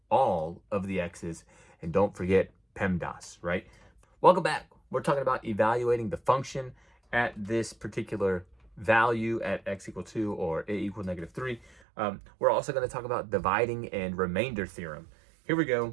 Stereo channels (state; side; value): drops out; left; at 11.8 s